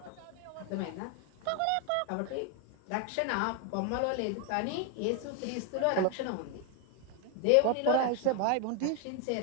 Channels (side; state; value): both; different; correlation 0.01